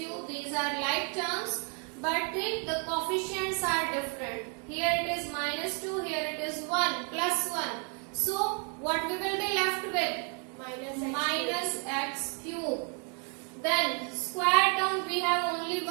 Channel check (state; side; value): quieter; left; 38.7 dB